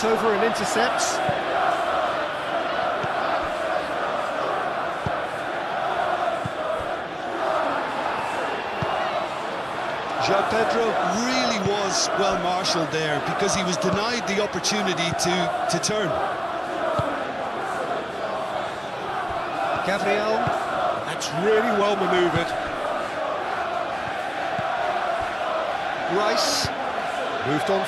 over and intercepts. João Pedro really was well marshalled there because he was denied the opportunity to turn. Gabriel, that's really well manoeuvred. Rice, moved on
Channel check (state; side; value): identical; both; correlation 1.00